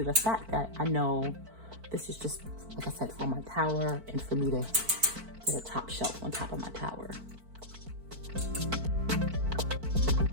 the fact that I know this is just, like I said, for my tower and for me to get a top shelf on top of my tower.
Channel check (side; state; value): left; late; 4.5 ms